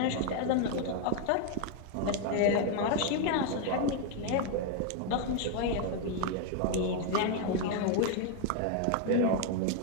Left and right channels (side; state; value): both; different; correlation 0.00